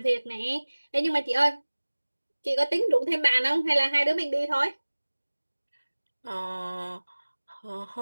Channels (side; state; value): both; inverted; correlation -1.00